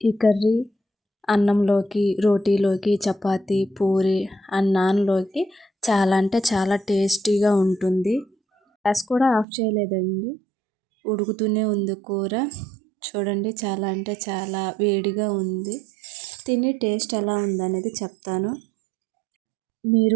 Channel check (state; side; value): drops out; left; at 9.5 s